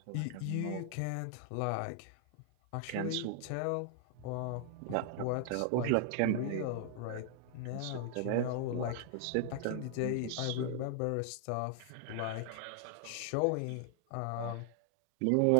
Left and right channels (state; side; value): different; both; correlation 0.00